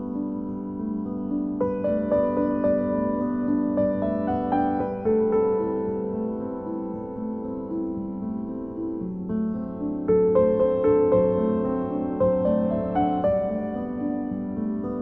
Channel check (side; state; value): right; noise; rumble, 23 dB below the sound